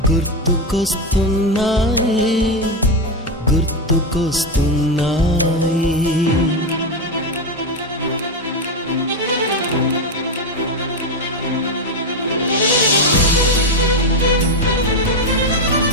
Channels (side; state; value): both; normal; correlation 0.10